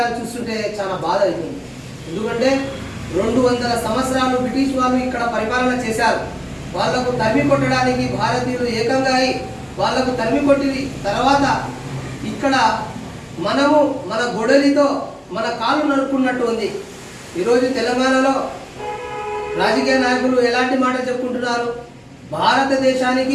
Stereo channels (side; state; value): both; identical; correlation 1.00